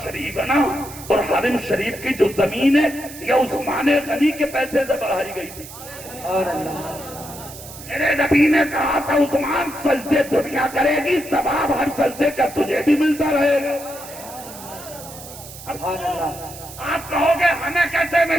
شریف ہے نا، اور حرم شریف کی جو زمین ہے یہ عثمان غنی کے پیسے سے بڑھائی گئی تھی۔ میرے نبی نے کہا تھا عثمان سجدے دنیا کرے گی، ثواب ہر سجدے کا تجھے بھی ملتا رہے گا۔ آپ کہو گے ہمیں کیسے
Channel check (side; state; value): right; noise; hiss, 15 dB below the sound